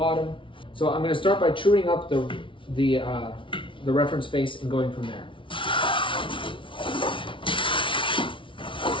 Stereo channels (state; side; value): late; right; 0.25 ms